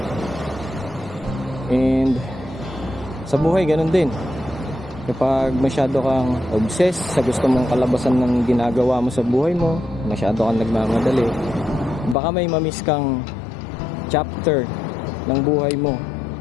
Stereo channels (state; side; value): drops out; right; at 12.2 s